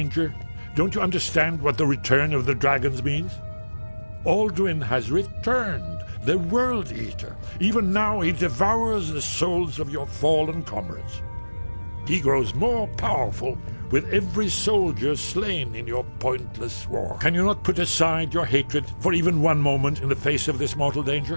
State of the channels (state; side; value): inverted; both; correlation -1.00